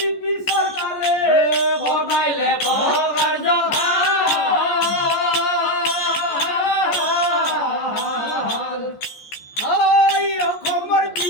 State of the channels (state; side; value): late; right; 14 ms